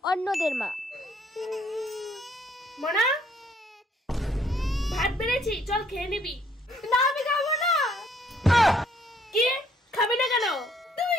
অন্যদের মা, মনা ভাত বেড়েছি, চল খেয়ে নিবি। না আমি খাবো না। কি খাবি না কেন? তুমি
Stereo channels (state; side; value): normal; both; correlation 0.65